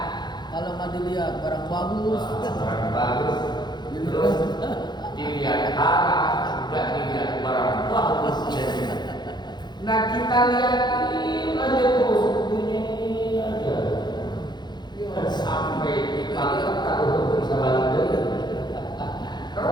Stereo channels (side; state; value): right; late; 0.21 ms